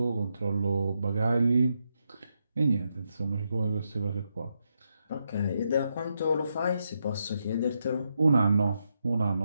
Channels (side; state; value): both; inverted; correlation -0.83